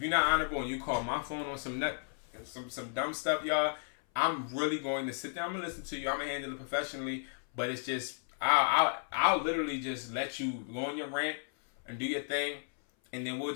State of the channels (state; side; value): silent; right; 55 dB below the other